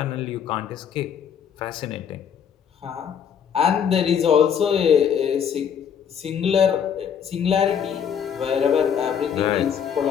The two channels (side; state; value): right; quieter; 7.9 dB